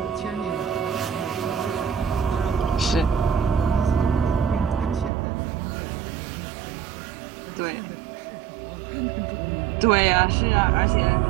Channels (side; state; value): left; drops out; at 5.1 s